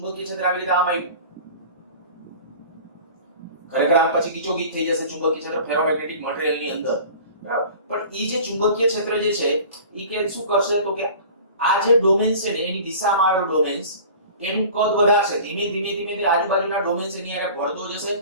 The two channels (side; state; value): both; inverted; correlation -0.42